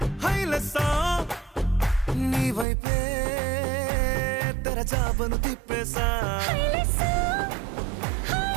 హైలెస్సా నీ వైపే తెరచాపను తిప్పేసా హైలెస్సా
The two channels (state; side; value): drops out; left; at 2.7 s